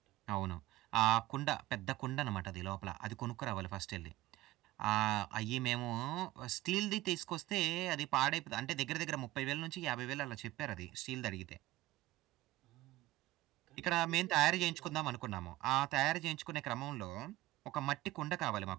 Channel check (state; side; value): quieter; left; 16.6 dB